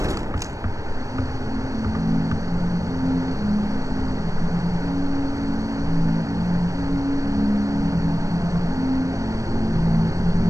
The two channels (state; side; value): late; left; 0.16 ms